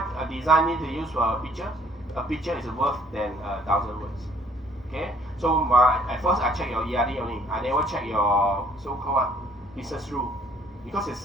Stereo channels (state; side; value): normal; both; correlation 0.60